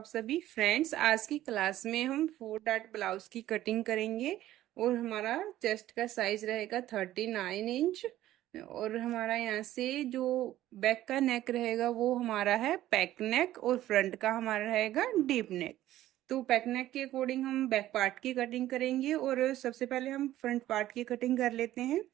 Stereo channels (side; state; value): left; quieter; 14.0 dB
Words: सभी फ्रेंड्स। आज की क्लास में हम 4 डॉट ब्लाउज की कटिंग करेंगे और हमारा चेस्ट का साइज रहेगा 39 इंच। और हमारा यहाँ से जो बैक का नेक रहेगा वो हमारा है पैक नेक और फ्रंट का हमारा रहेगा डीप नेक। तो पैक नेक के अकॉर्डिंग हम बैक पार्ट की कटिंग करेंगे और सबसे पहले हम फ्रंट पार्ट की कटिंग कर लेते हैं।